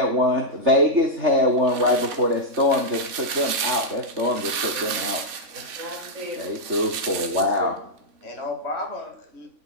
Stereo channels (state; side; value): late; left; 3.5 ms